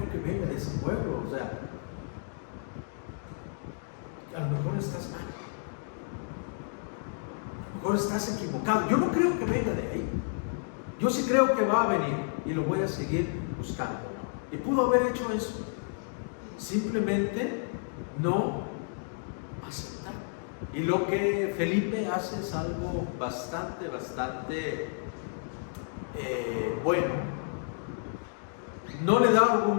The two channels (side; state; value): right; silent; digital silence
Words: que venga de ese pueblo. O sea, a lo mejor estás mal, a lo mejor estás equivocado. Yo no creo que venga de ahí. Yo sí creo que va a venir y lo voy a seguir buscando. Y pudo haber hecho eso. Simplemente no aceptar. Y lo que Felipe hace es algo bastante bueno. No le da